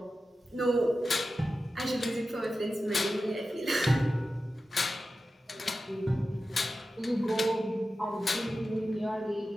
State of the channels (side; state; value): both; normal; correlation 0.93